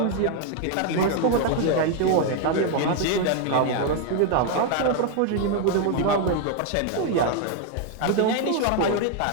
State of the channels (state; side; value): different; both; correlation 0.01